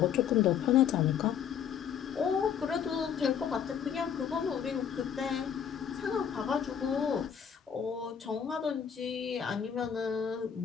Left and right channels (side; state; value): right; quieter; 8.1 dB